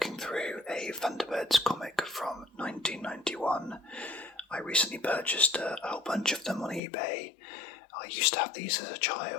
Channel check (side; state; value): right; drops out; at 6.8 s